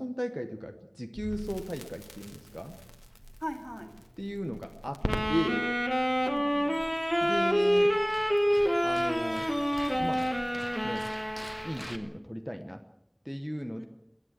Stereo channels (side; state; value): both; identical; correlation 1.00